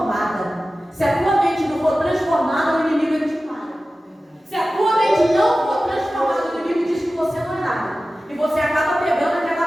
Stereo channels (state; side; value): normal; both; correlation 0.95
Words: Se a tua mente não for transformada, o inimigo ele te para. Se a tua mente não for transformada, o inimigo diz que você não é nada. E você acaba pegando